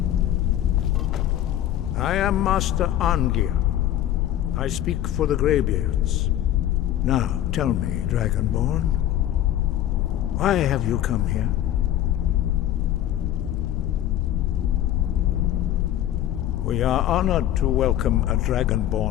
I am Master Angir. I speak for the Greybeards. Now, tell me, Dragonborn, why have you come here? We are honored to welcome a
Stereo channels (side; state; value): right; quieter; 12.3 dB